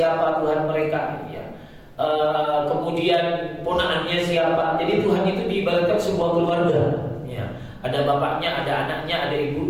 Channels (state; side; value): identical; both; correlation 1.00